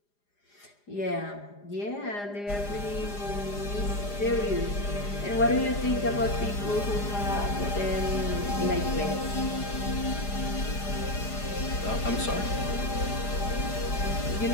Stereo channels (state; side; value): late; right; 4.9 ms